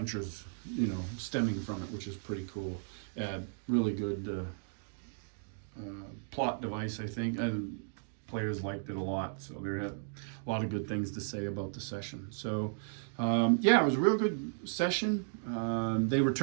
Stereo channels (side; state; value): left; silent; digital silence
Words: stemming from it, which is pretty cool. Really good plot device, I think, and players liked it a lot, so there had a lot of good things to say about the session. So yeah, it was a real good session. They